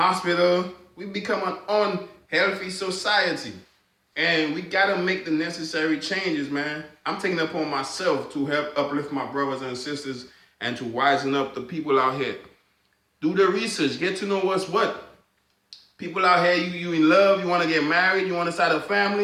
We become an unhealthy society. And we got to make the necessary changes, man. I'm taking it upon myself to help uplift my brothers and sisters and to wisen up the people out here. Do the research. Get to know what's what. People out here, you in love, you want to get married, you want to start a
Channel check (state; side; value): identical; both; correlation 1.00